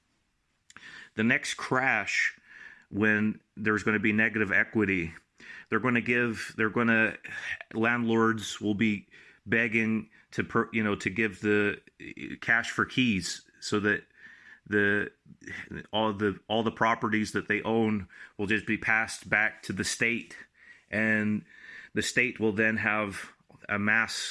The next crash, when there's going to be negative equity, landlords will be begging to give the cash for keys, so that all the properties that they own will just be passed back to the state, and the state will then have a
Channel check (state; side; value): identical; both; correlation 1.00